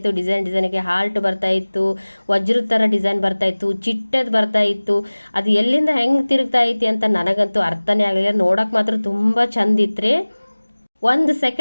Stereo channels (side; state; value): both; inverted; correlation -1.00